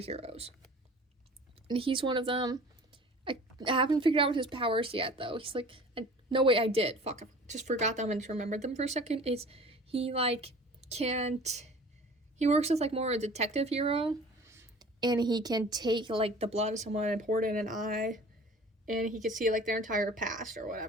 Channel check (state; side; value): normal; both; correlation 0.45